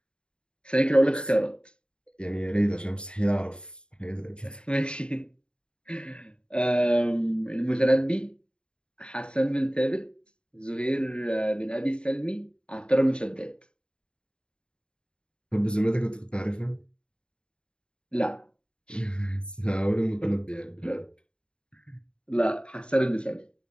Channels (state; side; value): late; right; 0.052 ms